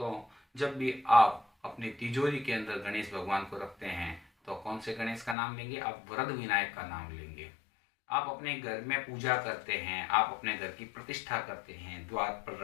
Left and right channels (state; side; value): drops out; right; at 5.4 s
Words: जब भी आप अपनी तिजोरी के अंदर गणेश भगवान को रखते हैं तो कौन से गणेश का नाम लेंगे? आप वरद विनायक का नाम लेंगे। आप अपने घर में पूजा करते हैं, आप अपने घर की प्रतिष्ठा करते हैं, द्वार